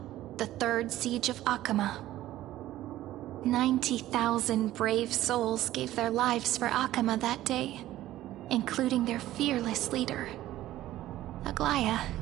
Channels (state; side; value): quieter; left; 14.6 dB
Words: the Third Siege of Akama. 90,000 brave souls gave their lives for Akama that day, including their fearless leader, Aglaya.